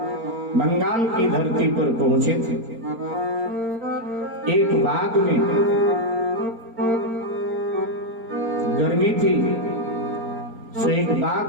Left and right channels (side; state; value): left; late; 4.3 ms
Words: बंगाल की धरती पर पहुंचे थे। एक बाग में गर्मी थी, सो एक